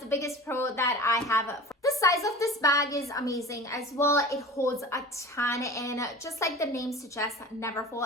biggest pro that I have. The size of this bag is amazing as well. It holds a ton, and just like the name suggests,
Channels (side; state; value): both; normal; correlation 0.37